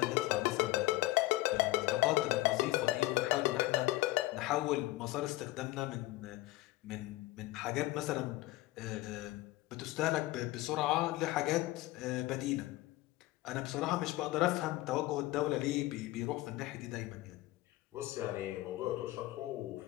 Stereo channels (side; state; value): right; quieter; 18.5 dB